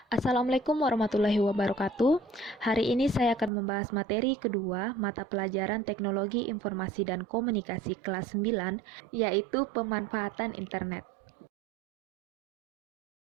Assalamualaikum warahmatullahi wabarakatuh. Hari ini saya akan membahas materi kedua mata pelajaran Teknologi Informasi dan Komunikasi kelas 9, yaitu pemanfaatan internet.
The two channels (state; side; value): drops out; left; at 3.5 s